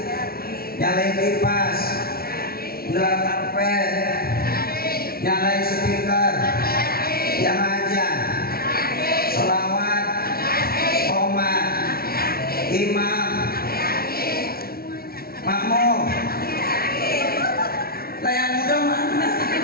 nyalain kipas, gelar karpet, nyalain speaker, yang ajan, sholawat, qomat, imam, makmum. Lah yang muda mana?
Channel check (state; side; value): late; right; 0.44 ms